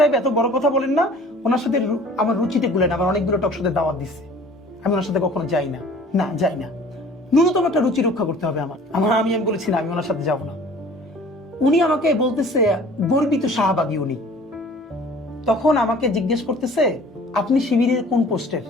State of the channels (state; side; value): normal; both; correlation 0.49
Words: এত বড় কথা বলেন না, ওনার সাথে আমার রুচিতে গুলেন, আমার অনেকগুলো টক সাথে দাওয়াত দিচ্ছে, আমি ওনার সাথে কখনো যাই না, না যাই না। ন্যূনতম একটা রুচি রক্ষা করতে হবে আমি বলেছি না, আমি ওনার সাথে যাবো না। উনি আমাকে বলতেছে গর্বিত শাহবাগী উনি। তখন আমাকে জিজ্ঞেস করতেছে আপনি শিবিরের কোন পোস্টের?